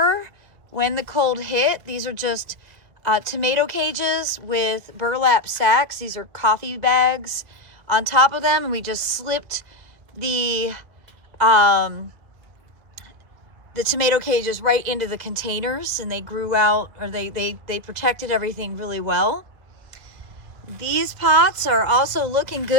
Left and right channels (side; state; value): left; late; 2.0 ms